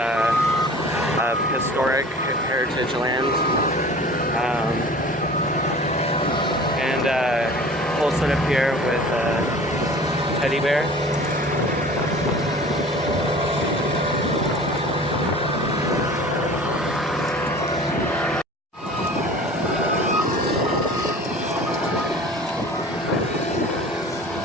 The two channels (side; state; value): both; normal; correlation 0.43